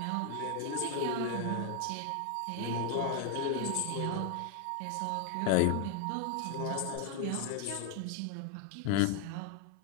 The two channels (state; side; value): different; both; correlation 0.01